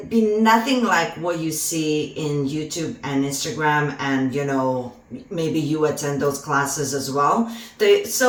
be nothing like what you see in YouTube and Instagram, and, you know, maybe you attend those classes as well.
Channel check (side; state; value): both; identical; correlation 1.00